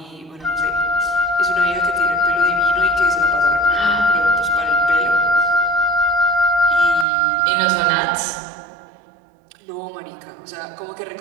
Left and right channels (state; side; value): drops out; left; at 7.1 s